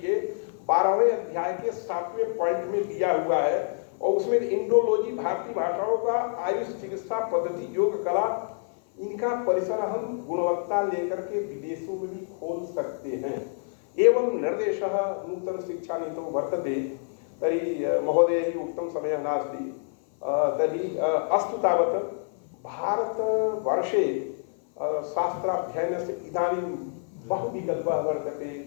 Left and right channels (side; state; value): right; silent; 55 dB below the other